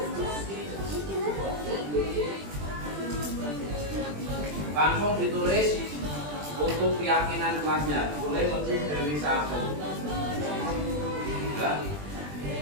langsung ditulis untuk keyakinan kelasnya, boleh lebih dari 1. Ya.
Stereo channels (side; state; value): left; late; 20 ms